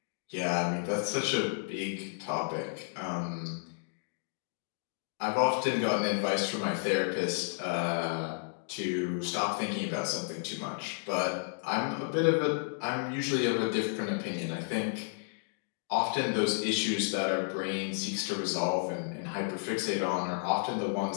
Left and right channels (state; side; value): silent; right; digital silence